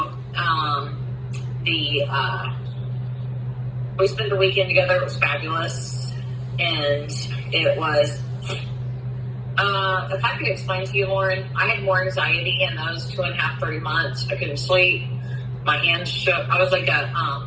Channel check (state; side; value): identical; both; correlation 1.00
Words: we spent the weekend together. It was fabulous. And it was, if I could explain to you, Lauren, I had more anxiety in those 2.5, 3 months. I couldn't sleep. My hands shook. I was like a